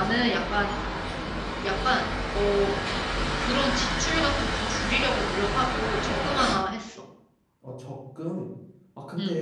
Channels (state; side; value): identical; both; correlation 1.00